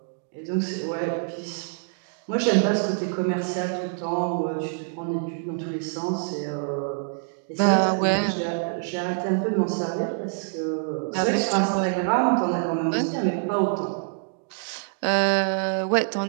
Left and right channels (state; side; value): silent; left; digital silence